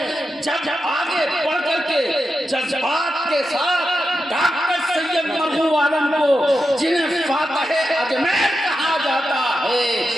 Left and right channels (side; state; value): both; normal; correlation 0.89